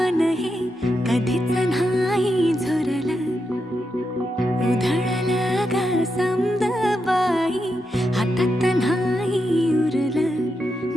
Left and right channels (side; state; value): both; normal; correlation 0.85